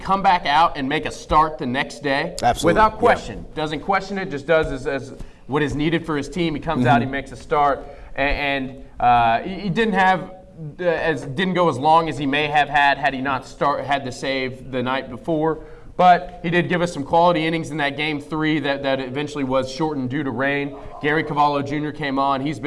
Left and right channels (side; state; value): both; identical; correlation 1.00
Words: back out and make a start the next day, without question, doesn't question it, just does as what is needed for his team. He comes out, he makes a start, and he didn't have didn't go as long as he may have had he not had the save the night before. But he did give us some quality innings in that Game 3 that eventually was shortened due to rain. Gary Cavallo Jr. came on. He's